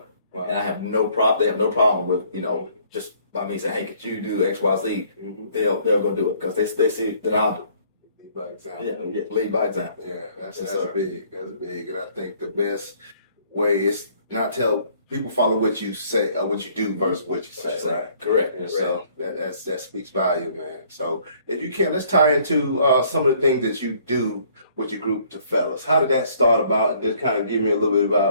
Wow. And I have no problem. They have no problem with, just by me saying, hey, could you do X, Y, Z? They'll go do it because they see that I'll do it. Lead by example. Yeah, lead by example. Yeah, that's sir. big. That's big. And I think the best way is not tell people follow what you say or what you do versus what you say, right? Correct. And so that speaks value, man. So if you can, let's tie into some of the things that you do with your group, the fellas. How did that start about? And just kind of give me a little bit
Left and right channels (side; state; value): both; inverted; correlation -0.61